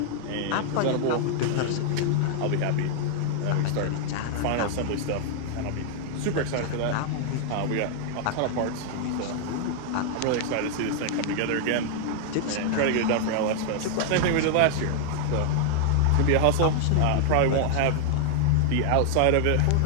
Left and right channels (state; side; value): different; both; correlation 0.00